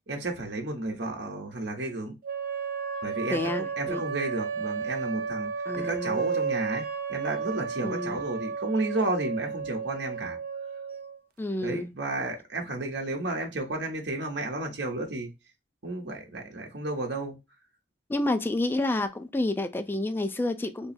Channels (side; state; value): both; normal; correlation 0.23